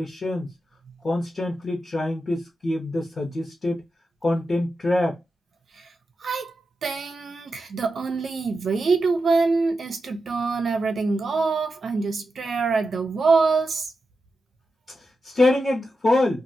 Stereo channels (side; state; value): both; normal; correlation 0.89